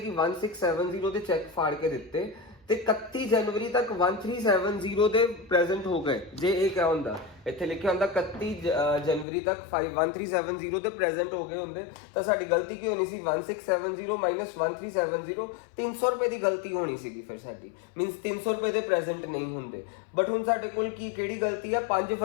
1670 ਦੇ ਚੈੱਕ ਫਾੜ ਕੇ ਦਿੱਤੇ ਤੇ 31 ਜਨਵਰੀ ਤੱਕ 1370 ਦੇ ਪ੍ਰੈਜ਼ੈਂਟ ਹੋ ਗਏ, ਜੇ ਇਹ ਕਿਹਾ ਹੁੰਦਾ, ਇੱਥੇ ਲਿਖਿਆ ਹੁੰਦਾ 31 ਜਨਵਰੀ ਤੱਕ 1370 ਦੇ ਪ੍ਰੈਜ਼ੈਂਟ ਹੋ ਗਏ ਹੁੰਦੇ ਤਾਂ ਸਾਡੀ ਗਲਤੀ ਕੀ ਹੋਣੀ ਸੀ, 1670 ਮਾਈਨਸ 1370, 300 ਰੁਪਏ ਦੀ ਗਲਤੀ ਹੋਣੀ ਸੀਗੀ ਫਿਰ ਸਾਡੀ, ਮੀਨਸ 300 ਰੁਪਏ ਦੇ ਪ੍ਰੈਜ਼ੈਂਟ ਨਹੀਂ ਹੁੰਦੇ। ਬਟ ਹੁਣ ਸਾਡੇ ਕੋਲ ਕਿਹੜੀ ਗਲਤੀ ਹੈ, 5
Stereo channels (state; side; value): drops out; right; at 9.2 s